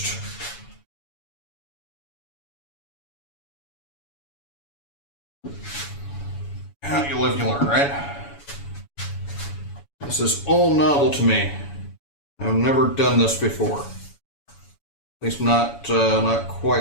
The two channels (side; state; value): right; late; 7.1 ms